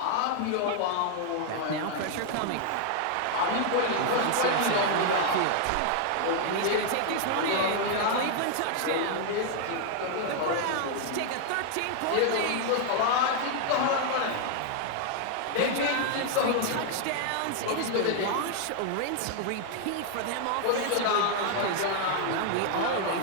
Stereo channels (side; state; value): both; different; correlation 0.00